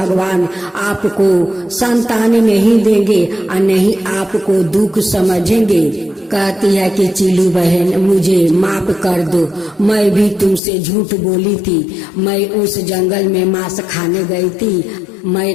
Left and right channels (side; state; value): right; drops out; at 10.6 s